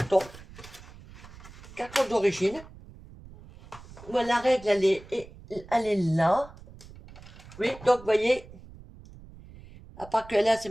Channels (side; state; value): right; noise; rumble, 19 dB below the sound